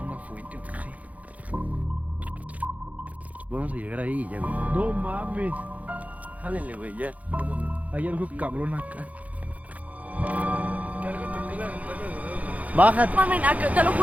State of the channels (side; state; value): left; late; 0.071 ms